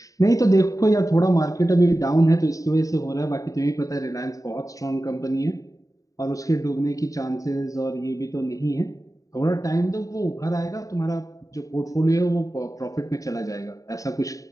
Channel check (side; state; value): right; late; 0.16 ms